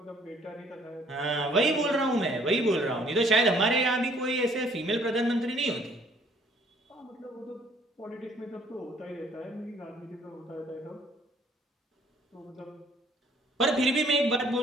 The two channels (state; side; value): normal; both; correlation 0.60